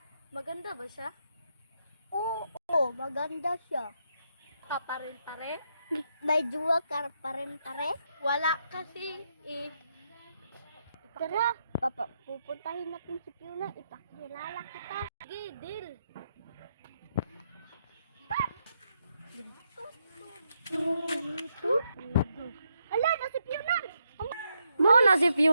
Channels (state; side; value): inverted; both; correlation -0.80